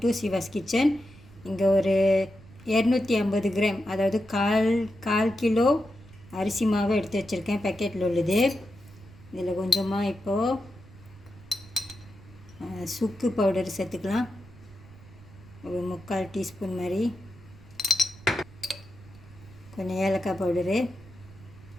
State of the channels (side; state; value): right; noise; rumble, 21 dB below the sound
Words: to Siva's kitchen. இங்கே ஒரு 250 கிராம், அதாவது கால் கிலோ அரிசி மாவு எடுத்து வச்சுருக்கேன். பேக்கெட்டில் உள்ளது. இதில் கொஞ்சமாக இப்போது சுக்கு பவுடர் சேர்த்துக்கலாம். ஒரு 3/4 டீஸ்பூன் மாதிரி. கொஞ்சம் ஏலக்காய் பவுடரு,